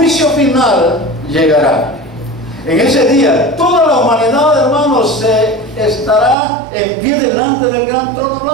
final llegará. En ese día, toda la humanidad, hermanos, estará en pie delante del gran trono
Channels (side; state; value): left; drops out; at 6.4 s